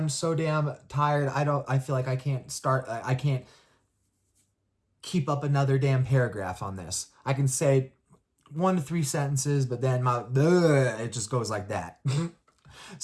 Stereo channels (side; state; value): both; identical; correlation 1.00